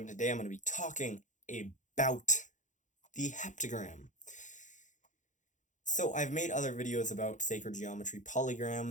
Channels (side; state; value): right; late; 0.36 ms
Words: today I'm going to be talking about the heptagram. So I've made other videos about sacred geometry